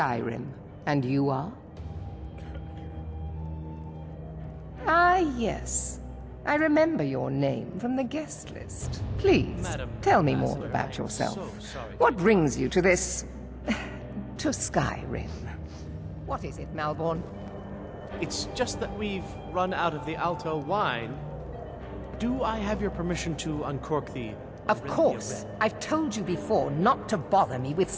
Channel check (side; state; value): both; identical; correlation 1.00